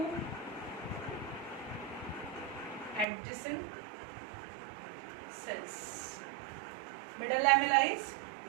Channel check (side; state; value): left; drops out; at 3.1 s